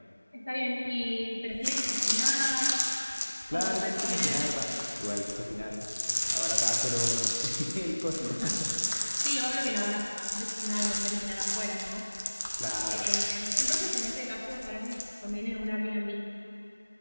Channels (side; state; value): both; inverted; correlation -1.00